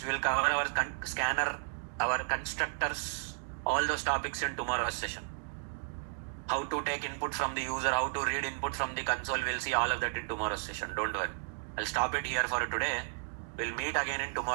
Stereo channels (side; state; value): left; silent; digital silence